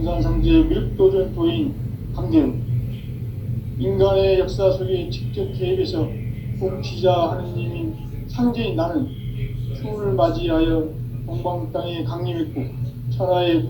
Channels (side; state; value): both; identical; correlation 1.00